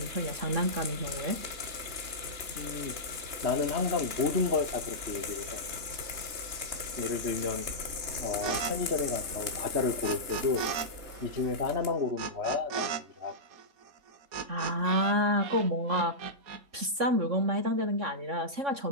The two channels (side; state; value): left; late; 3.3 ms